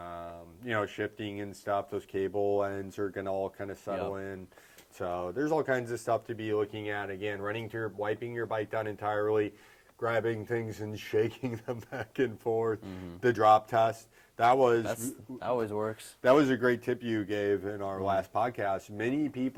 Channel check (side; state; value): both; identical; correlation 1.00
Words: Shifting and stuff, those cable ends are going to all kind of settle in. So there's all kinds of stuff to be looking at. Again, wiping your bike down entirely, grabbing things and shaking them back and forth. The drop test. That always works. That was a great tip you gave in our last podcast. Many